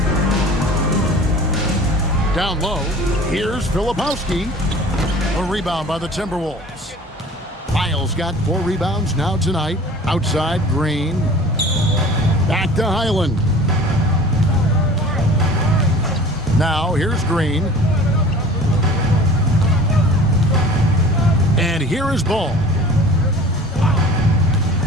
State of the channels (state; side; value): normal; both; correlation 0.44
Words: Down low, here's Filipowski. A rebound by the Timberwolves. Lyles got 4 rebounds now tonight. Outside, Green. Back to Highland. Now, here's Green. And here is Ball.